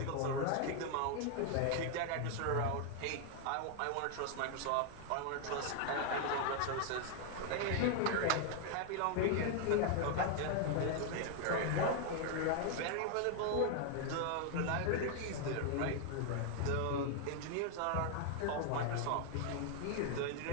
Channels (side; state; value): both; different; correlation 0.00